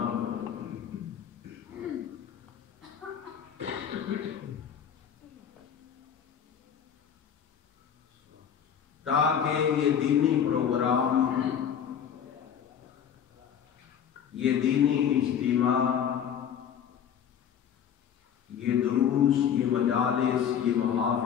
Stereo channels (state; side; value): quieter; right; 8.5 dB